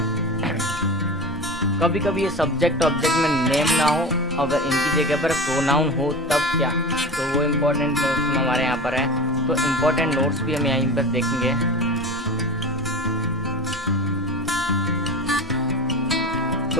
कभी कभी ये सब्जेक्ट ऑब्जेक्ट में नेम ना हो, अगर इनकी जगह पर प्रोनाउन हो तब क्या, तो वो इम्पोर्टेंट नोट्स में हमारे यहाँ पर है। तो इम्पोर्टेंट नोट्स भी हम यहीं पर देखेंगे।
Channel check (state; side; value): normal; both; correlation 0.30